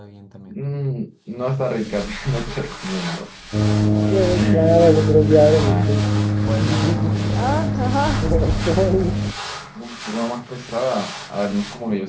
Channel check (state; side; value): identical; both; correlation 1.00